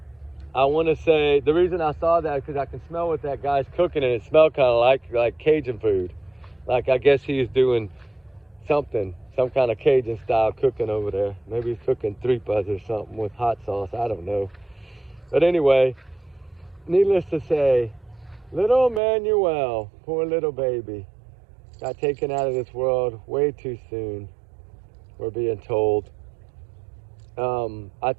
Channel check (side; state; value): left; drops out; at 19.0 s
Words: I want to say the reason I saw that is because I can smell what that guy's cooking, and it smelled kind of like Cajun food. Like I guess he's doing some kind of Cajun style cooking over there. Maybe he's cooking tripas or something with hot sauce. I don't know. But anyway, needless to say, little Emmanuel, poor little baby, got taken out of this world way too soon, we're being told. I